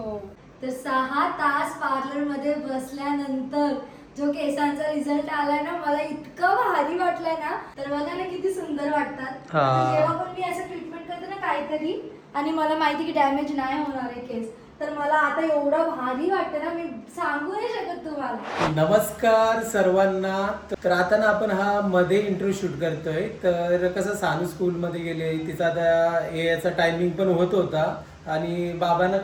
तर 6 तास पार्लर मध्ये बसल्यानंतर जो केसांचा रिझल्ट आलाय ना, मला इतकं भारी वाटलंय ना. तर बघा ना किती सुंदर वाटतात. हा. जेव्हा पण मी असं ट्रीटमेंट करते ना काहीतरी आणि मला माहिती की डॅमेज नाही होणार आहे केस, तर मला आता एवढं भारी वाटतं ना, मी सांगू नाही शकत तुम्हाला. नमस्कार सर्वांना. तर आता ना आपण हा मध्ये इंट्रो शूट करतोय. तर कसं सानू स्कूल मध्ये गेले, तिचा आता याचा टायमिंग पण होत होता आणि बाबांना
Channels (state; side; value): identical; both; correlation 1.00